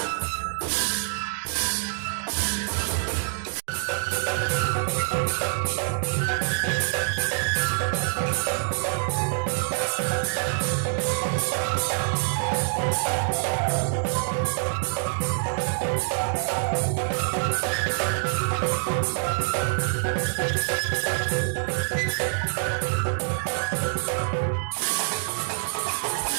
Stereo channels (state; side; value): silent; left; digital silence